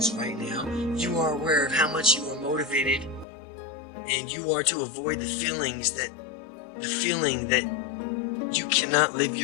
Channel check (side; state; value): right; drops out; at 3.2 s